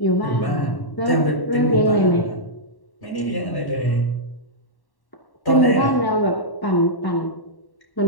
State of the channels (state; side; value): late; right; 1.1 ms